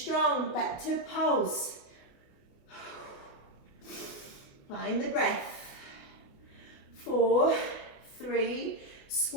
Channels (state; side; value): late; right; 27 ms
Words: strong. Back to pulse. Find the breath. 4, 3,